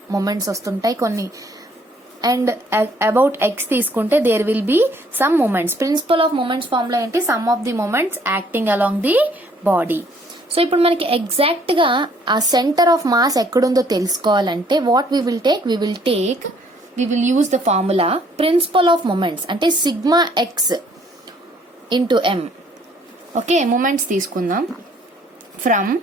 మొమెంట్స్ వస్తుంటాయి కొన్ని, అండ్ అబౌట్ ఎక్స్ తీసుకుంటే there will be some moments. Principle of moments formula ఏంటి, sum of the moments acting along the body. So ఇప్పుడు మనకి ఎగ్జాక్ట్ గా ఆ సెంటర్ ఆఫ్ మాస్ ఎక్కడుందో తెలుసుకోవాలంటే what we will use the formula principle of moments, అంటే sigma X into M. Okay, moments తీసుకుందాం. From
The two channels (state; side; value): normal; both; correlation 0.62